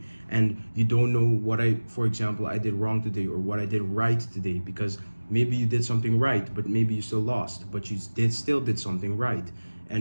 and you don't know what for example, I did wrong today or what I did right today, because maybe you did something right but maybe you still lost, but you still did something right,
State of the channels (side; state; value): both; inverted; correlation -1.00